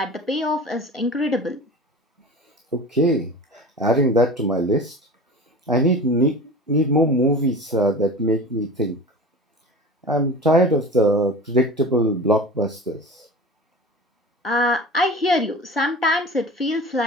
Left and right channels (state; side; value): normal; both; correlation 0.35